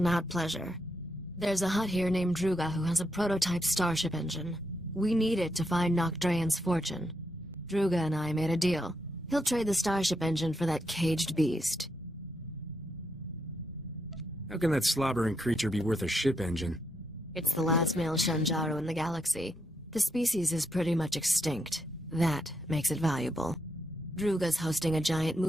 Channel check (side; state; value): both; normal; correlation 0.80